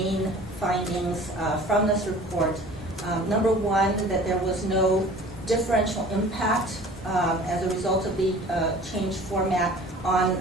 findings from this report. Number 1, that there was no differential impact as a result of the changed format on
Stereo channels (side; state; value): both; normal; correlation 0.45